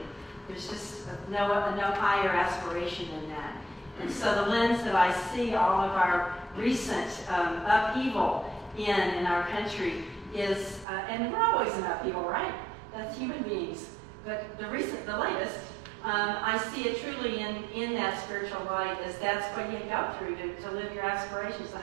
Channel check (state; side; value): drops out; left; at 10.9 s